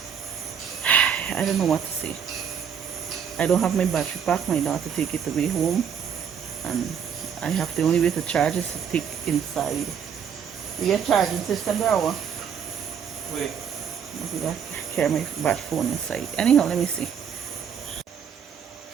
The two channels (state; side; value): quieter; left; 7.7 dB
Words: I don't know what to say. I don't have my battery pack. My daughter take it away home, and I have the only way to charge is to take inside. You get charging system there or? Wait. I got to carry my battery phone inside. Anyhow, let me see.